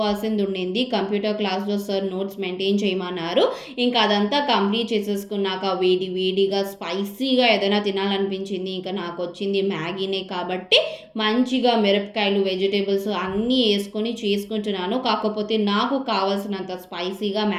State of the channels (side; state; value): both; identical; correlation 1.00